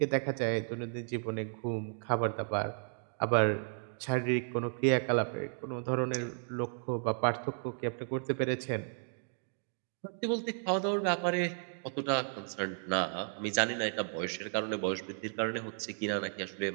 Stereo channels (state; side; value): silent; left; digital silence